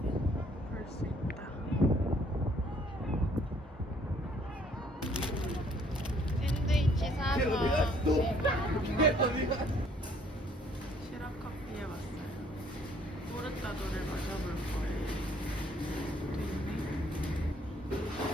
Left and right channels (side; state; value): both; normal; correlation 0.62